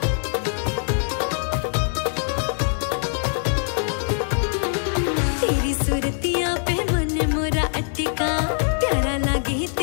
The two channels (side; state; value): right; silent; 63 dB below the other